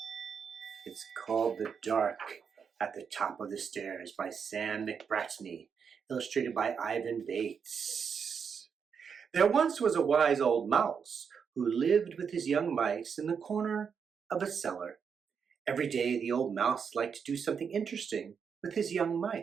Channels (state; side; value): quieter; left; 6.6 dB